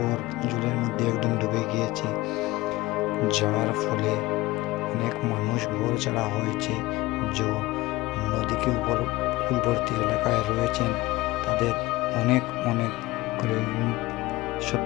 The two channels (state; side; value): quieter; right; 19.6 dB